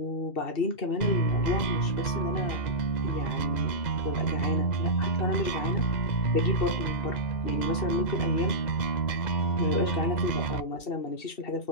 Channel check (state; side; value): late; right; 2.7 ms